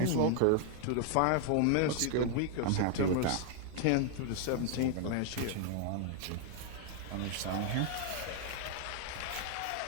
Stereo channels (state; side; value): different; both; correlation 0.00